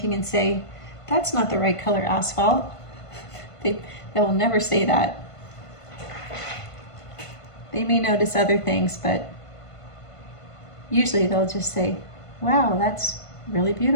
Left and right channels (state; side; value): late; right; 1.5 ms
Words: and say, that's not the right color asphalt. They will never say that. They may notice other things, but usually they'll just say, wow, that's really